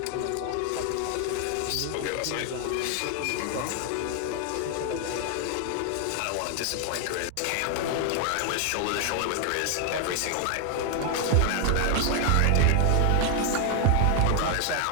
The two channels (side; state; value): both; different; correlation 0.00